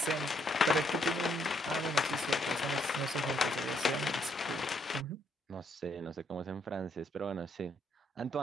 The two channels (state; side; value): normal; both; correlation 0.72